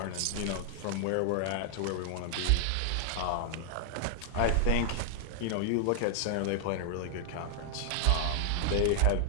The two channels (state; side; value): different; both; correlation -0.01